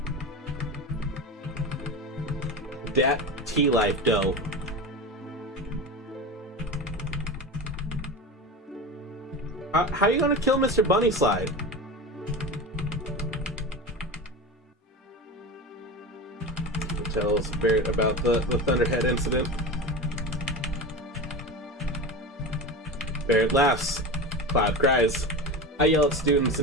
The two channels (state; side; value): normal; both; correlation 0.26